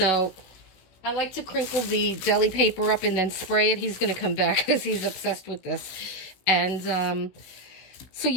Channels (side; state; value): right; late; 16 ms